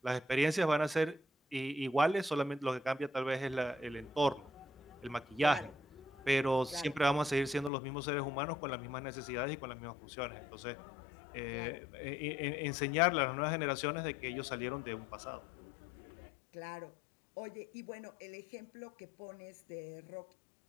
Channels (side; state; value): right; drops out; at 7.7 s